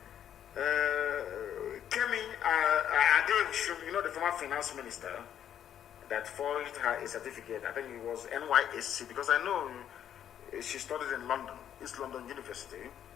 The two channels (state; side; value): quieter; right; 9.9 dB